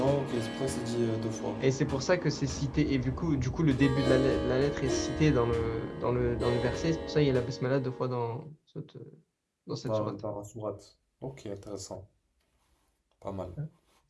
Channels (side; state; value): both; identical; correlation 1.00